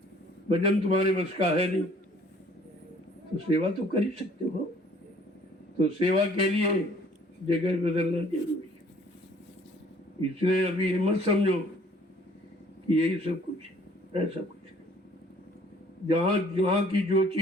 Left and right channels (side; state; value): both; normal; correlation 0.57